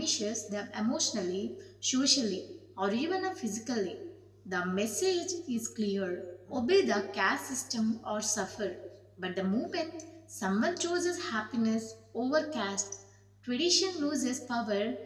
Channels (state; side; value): identical; both; correlation 1.00